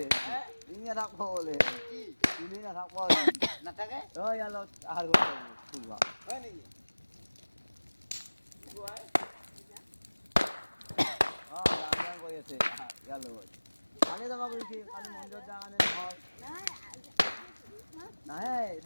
তিনি না রাখবো বলে তিনি না রাখবো না থাকে ওই আলো আর ফুলবা হয় নাকি গান করে আছে গেল কালে যাবা কইছি কালি মন্দির জাগানে হল না এই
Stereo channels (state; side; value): inverted; both; correlation -1.00